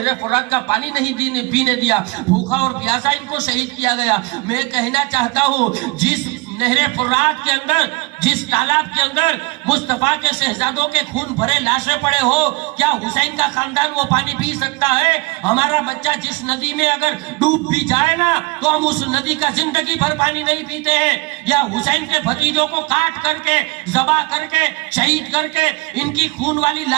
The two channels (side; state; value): left; quieter; 25.5 dB